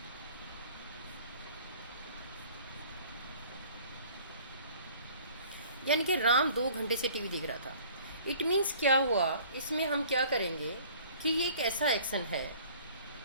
यानी कि राम 2 घंटे से टीवी देख रहा था। इट मीन्स क्या हुआ, इसमें हम क्या करेंगे कि ये एक ऐसा एक्शन है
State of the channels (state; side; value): inverted; both; correlation -0.52